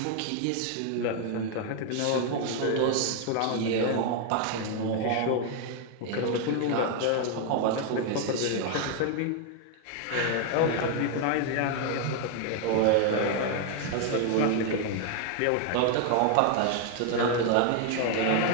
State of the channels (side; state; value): both; different; correlation 0.00